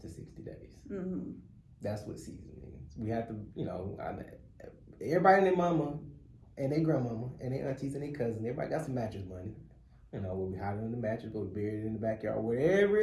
60 days. Mm-hmm. That's what season means. We have to, everybody and their mama and their grandmama and their aunties and their cousins, everybody got some mattress money. Where we hide it in the mattress, go bury it in the backyard, wherever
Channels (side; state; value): both; identical; correlation 1.00